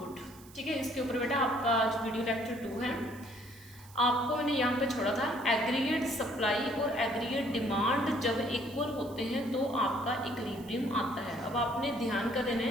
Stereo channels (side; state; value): right; noise; hiss, 22 dB below the sound